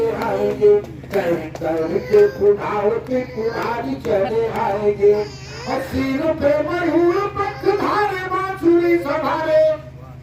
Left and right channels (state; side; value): identical; both; correlation 1.00